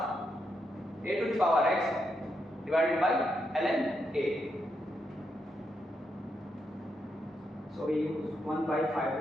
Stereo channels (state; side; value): normal; both; correlation 0.82